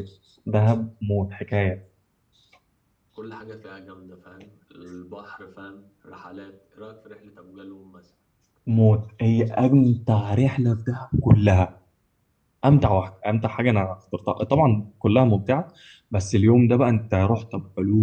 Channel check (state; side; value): identical; both; correlation 1.00